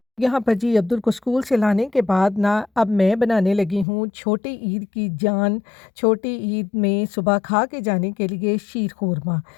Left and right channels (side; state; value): right; drops out; at 3.9 s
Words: यहाँ पर जी अब्दुल को स्कूल से लाने के बाद ना अब मैं बनाने लगी हूँ छोटी ईद की जान। छोटी ईद में सुबह खा के जाने के लिए शीर खुरमा,